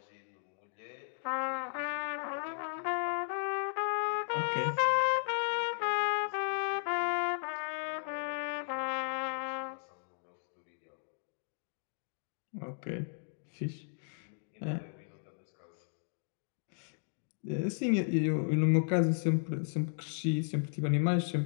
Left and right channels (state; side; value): silent; right; digital silence